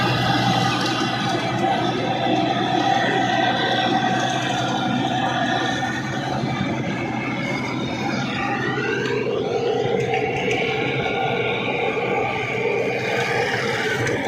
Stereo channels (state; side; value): identical; both; correlation 1.00